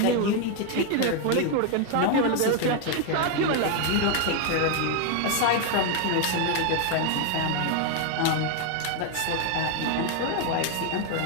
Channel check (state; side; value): different; both; correlation 0.01